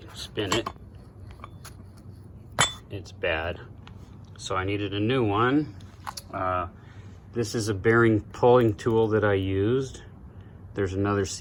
spin it, it's bad. So I needed a new one. This is a bearing pulling tool that I used. There's another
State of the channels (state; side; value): identical; both; correlation 1.00